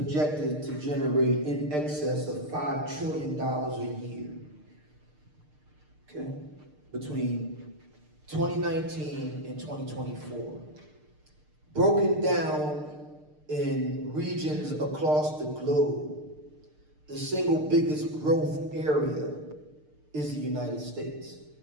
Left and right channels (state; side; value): late; left; 6.6 ms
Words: to generate in excess of $5 trillion a year. Okay? Between 2019 and 2024. Broken down in regions across the globe, the single biggest growth area is the United States.